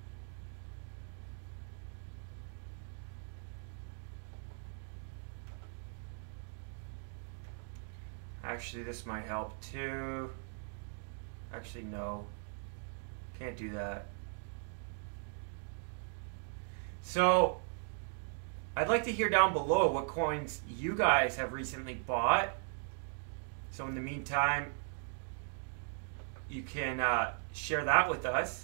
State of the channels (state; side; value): silent; left; 52 dB below the other